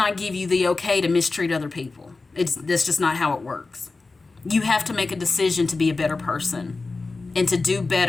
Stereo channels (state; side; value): quieter; right; 3.8 dB